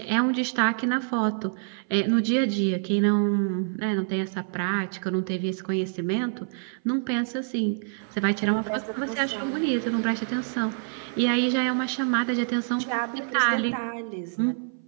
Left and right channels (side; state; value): left; silent; 56 dB below the other